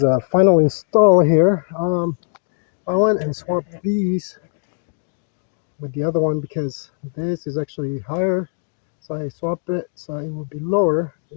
a final install here. I went and swapped these with the other one because this is actually higher. So I swapped it so it will be lower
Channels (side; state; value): right; silent; digital silence